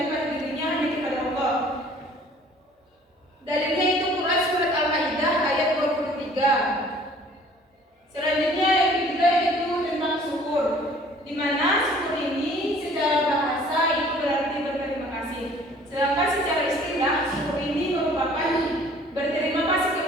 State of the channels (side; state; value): both; normal; correlation 0.53